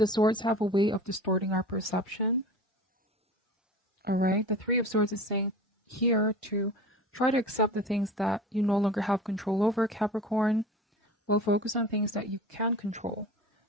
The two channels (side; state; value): both; normal; correlation 0.37